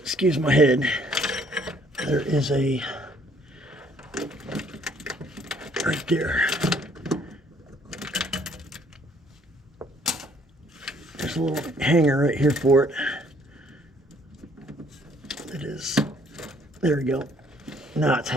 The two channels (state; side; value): normal; both; correlation 0.62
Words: my head, there is a, right there. There's there's a little hanger right here for it. It is. There we go. Now it's